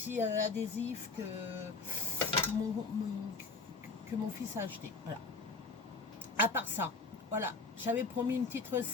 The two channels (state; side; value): quieter; right; 4.0 dB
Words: que mon fils a acheté. Voilà. À part ça, voilà. J'avais promis une petite